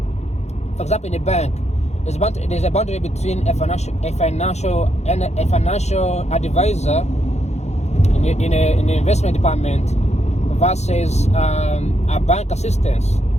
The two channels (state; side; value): late; right; 0.32 ms